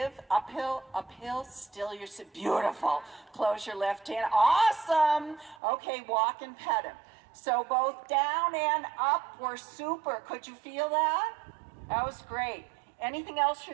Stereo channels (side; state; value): left; drops out; at 5.6 s